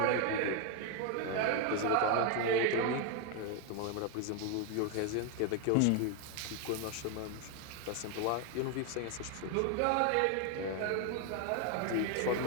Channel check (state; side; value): different; both; correlation 0.01